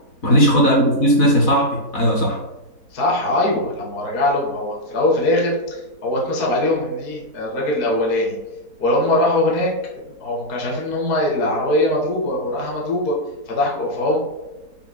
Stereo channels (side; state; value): right; late; 4.1 ms